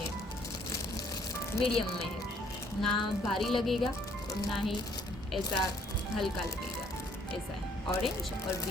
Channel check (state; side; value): normal; both; correlation 0.63